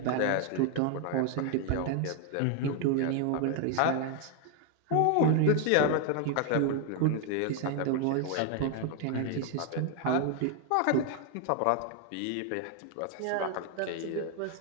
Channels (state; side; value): different; both; correlation 0.00